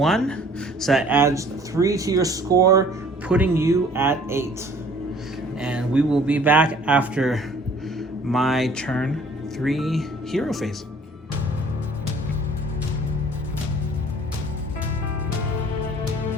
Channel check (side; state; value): both; normal; correlation 0.54